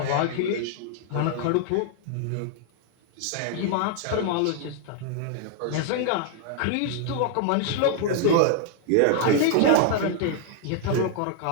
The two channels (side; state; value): both; different; correlation 0.00